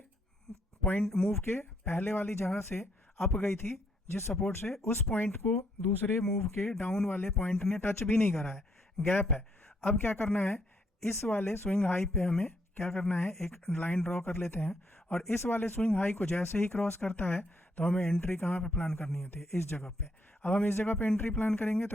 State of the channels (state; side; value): normal; both; correlation 0.72